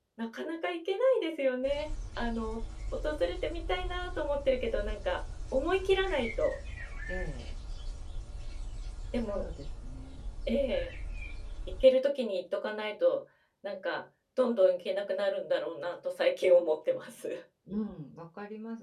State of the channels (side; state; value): both; identical; correlation 1.00